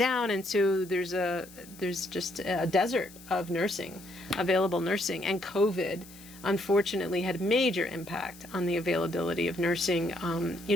and so there's just a desert of available nursing, and COVID unfortunately had major impact on the availability of nursing.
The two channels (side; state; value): left; noise; hiss, 20 dB below the sound